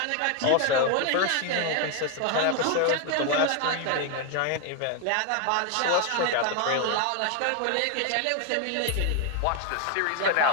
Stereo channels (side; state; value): both; different; correlation 0.00